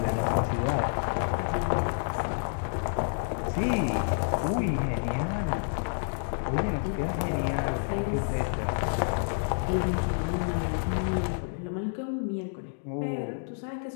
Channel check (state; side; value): silent; right; digital silence